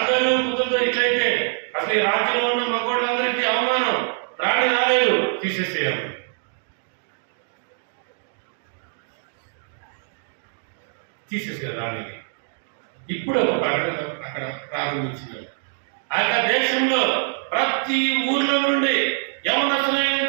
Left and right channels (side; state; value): left; silent; digital silence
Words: కుదురుతో ఇట్లయితే అసలు ఈ రాజ్యంలో ఉన్న మగోళ్ళందరికీ అవమానం, రాణి రాలేదు, తీసేసేయాలి. తీసేసారు రాణికి. ఇప్పుడు ఒక ప్రకటన అక్కడ ప్రారంభించినారు. ఆ దేశంలో ప్రతి ఊర్లో నుండి